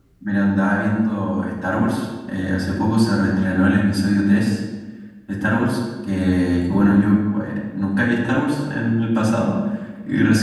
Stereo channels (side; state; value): both; identical; correlation 1.00